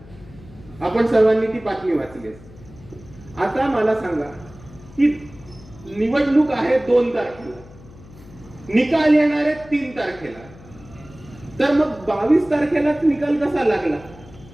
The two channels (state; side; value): noise; left; hum, 21 dB below the sound